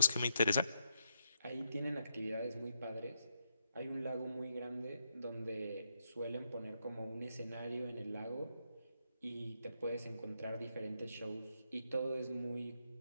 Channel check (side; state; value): both; inverted; correlation -0.80